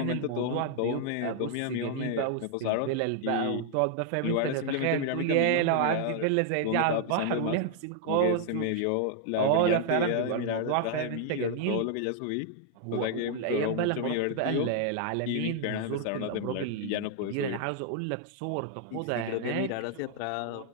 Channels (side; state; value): both; different; correlation 0.00